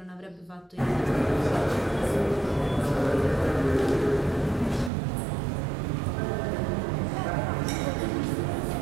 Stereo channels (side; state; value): left; drops out; at 4.9 s